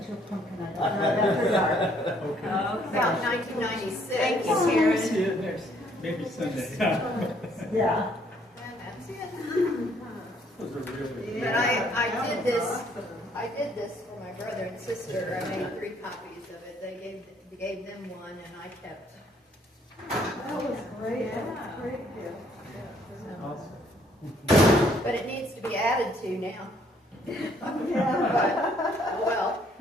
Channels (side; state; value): both; normal; correlation 0.65